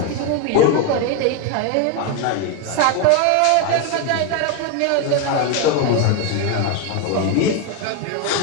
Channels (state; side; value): different; both; correlation 0.02